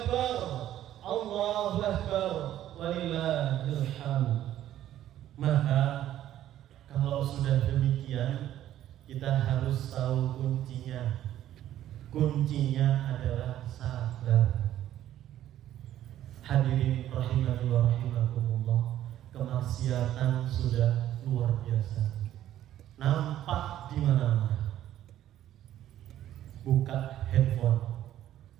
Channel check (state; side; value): quieter; left; 12.3 dB